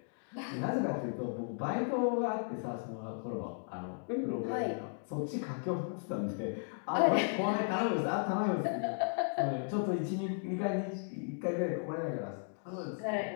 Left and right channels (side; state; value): right; silent; digital silence